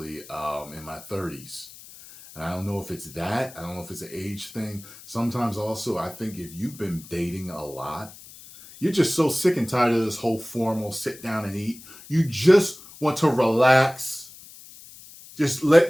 in my 30s. And I don't know if it's that. I don't know if it's an age thing. Sometimes also, I think if you've been dating a lot, you're just so sick and tired of this whole formal sit down and eat. You just want to relax. Just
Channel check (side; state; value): left; noise; hiss, 19 dB below the sound